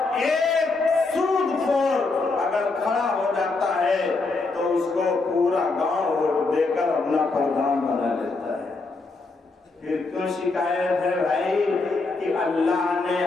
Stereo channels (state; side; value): quieter; right; 3.7 dB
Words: ایک سود خور اگر کھڑا ہو جاتا ہے تو اس کو پورا گاؤں ووٹ دے کر اپنا پردھان بنا لیتا ہے۔ پھر کیوں شکایت ہے بھائی کہ اللہ نے